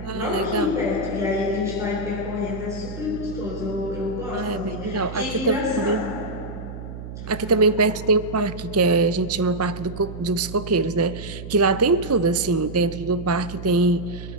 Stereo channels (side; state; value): right; noise; hum, 10 dB below the sound